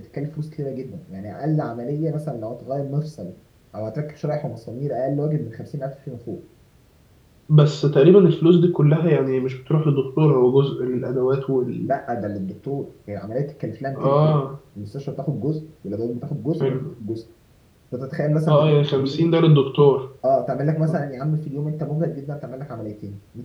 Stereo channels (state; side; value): identical; both; correlation 1.00